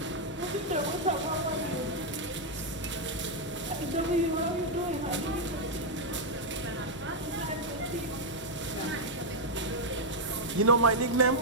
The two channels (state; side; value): normal; both; correlation -0.02